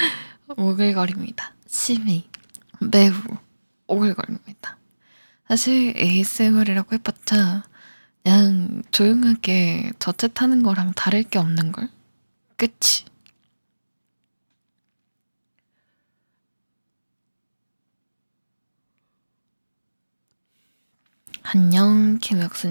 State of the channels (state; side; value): inverted; both; correlation -1.00